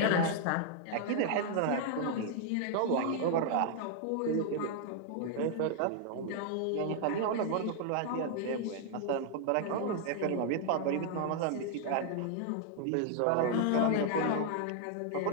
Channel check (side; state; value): both; different; correlation 0.00